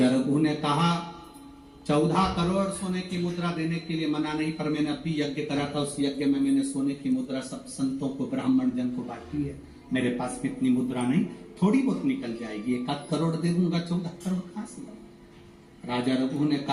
रघु ने कहा 14 करोड़ सोने की मुद्रा देने के लिए मना नहीं, पर मैंने अभी यज्ञ करा था, उस यज्ञ में मैंने सोने की मुद्रा सब संतों को, ब्राह्मण जन को बांटी है। मेरे पास कितनी मुद्रा नहीं, थोड़ी बहुत निकल जाएगी, 1 करोड़ दे दूंगा, 14 करोड़ कहां से? राजा रघु ने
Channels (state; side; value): identical; both; correlation 1.00